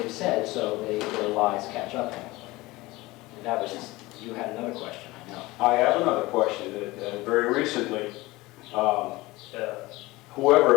said, so their lies catch up to them. And that was just, you had another question, I know. I have another question. Very recently,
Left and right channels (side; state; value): right; quieter; 20.5 dB